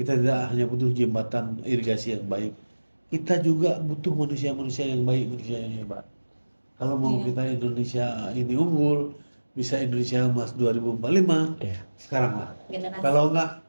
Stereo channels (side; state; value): both; inverted; correlation -1.00